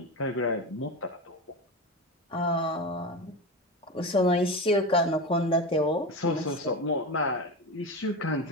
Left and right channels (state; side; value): normal; both; correlation 0.22